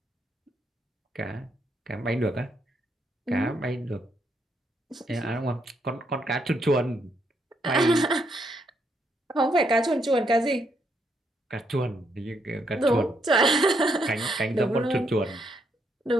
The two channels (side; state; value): both; normal; correlation 0.76